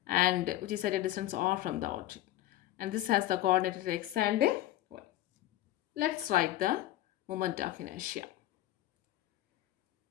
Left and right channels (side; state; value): right; quieter; 14.5 dB